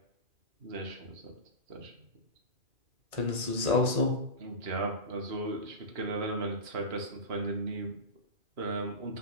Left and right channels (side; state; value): left; late; 2.4 ms